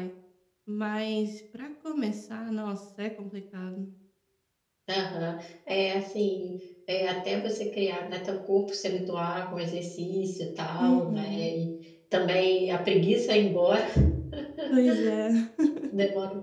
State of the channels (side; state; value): both; identical; correlation 1.00